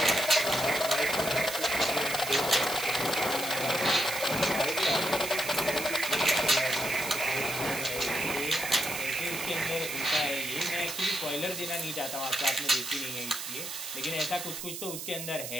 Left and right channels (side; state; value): right; noise; hiss, 7 dB below the sound